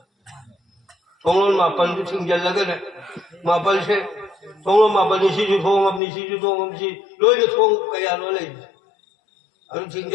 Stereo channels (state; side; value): drops out; right; at 6.0 s